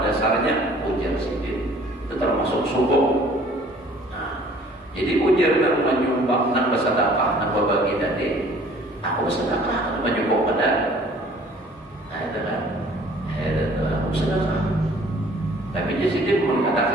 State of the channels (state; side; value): normal; both; correlation 0.54